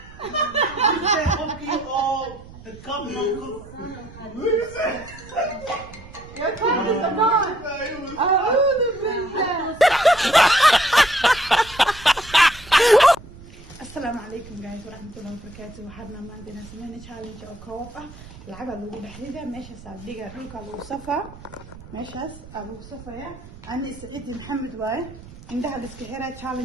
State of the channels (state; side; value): noise; right; rumble, 18 dB below the sound